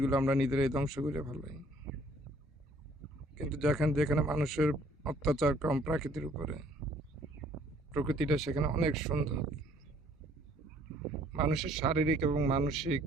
আমরা নিজেরাই ধ্বংস করে ফেলাই। কিন্তু যেখানে মানুষের অত্যাচার কম প্রাকৃতির উপরে, প্রকৃতিটা সেখানে অনেক সুন্দর। মানুষের শারীরিক এবং মানসিক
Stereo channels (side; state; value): both; normal; correlation 0.60